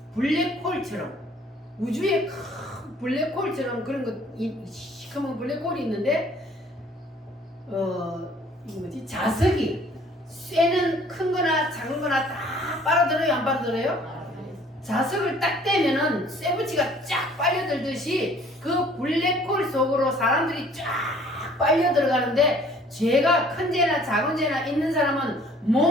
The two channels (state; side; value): normal; both; correlation 0.56